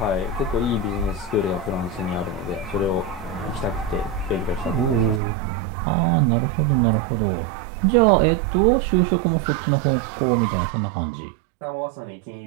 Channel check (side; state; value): left; drops out; at 5.2 s